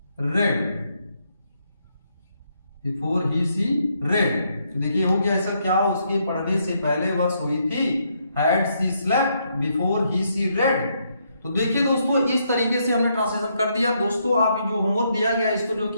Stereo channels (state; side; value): inverted; both; correlation -0.75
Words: read। तो देखिए हो गया ऐसा, क्या उसके पढ़ने से पहले वह सोई थी, had she slept before she read। तो देखिए दोस्तों इस तरीके से हमने ट्रांसलेशन कर दिया। दोस्तों आप जो होमवर्क दिया गया इसको जो